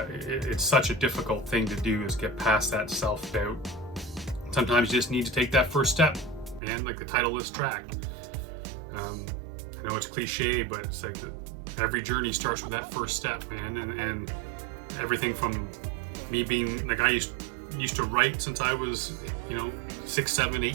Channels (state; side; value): drops out; left; at 6.6 s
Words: difficult thing to do, is get past that self-doubt. Sometimes you just need to take that first step, man, like the title of this track. I know it's cliche, but it's like every journey starts with that first step, man. And everything from me being like, I used to write since I was 6, 7, 8